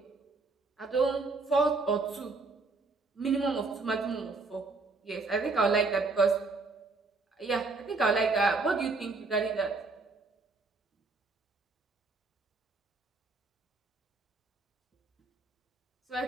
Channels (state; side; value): quieter; left; 3.8 dB